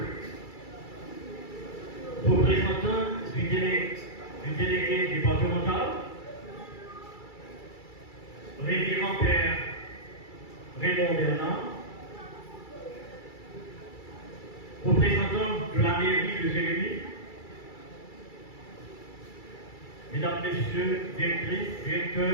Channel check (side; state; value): right; late; 2.3 ms